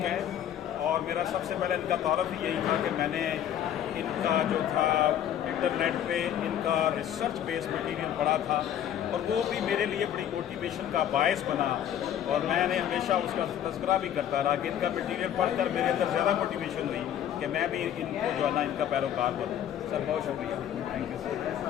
ہے، اور میرا سب سے پہلے ان کا تعارف ہی یہی تھا کہ میں نے ان کا جو تھا انٹرنیٹ پہ ان کا ریسرچ بیس مٹیریل پڑھا تھا، اور وہ بھی میرے لیے بڑی موٹیویشن کا باعث بنا، اور میں نے ہمیشہ اس کا تذکرہ بھی کرتا رہا کہ ان کا مٹیریل پڑھ کر میرے اندر زیادہ موٹیویشن ہوئی کہ میں بھی ان کو جو ہے نا ان کا پیروکار بنوں۔ سر بہت شکریہ، تھینک یو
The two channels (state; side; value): quieter; right; 10.3 dB